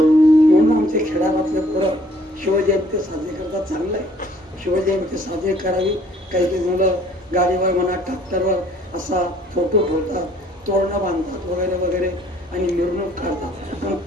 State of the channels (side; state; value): both; normal; correlation 0.59